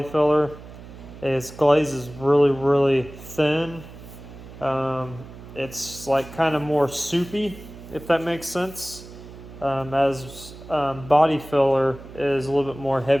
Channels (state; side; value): noise; right; hum, 16 dB below the sound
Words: filler is glaze is really, really thin. It's like kind of more soupy, if that makes sense. As body filler is a little bit more